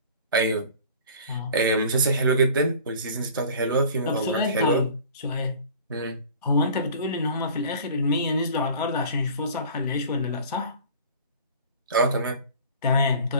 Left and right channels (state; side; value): inverted; both; correlation -0.44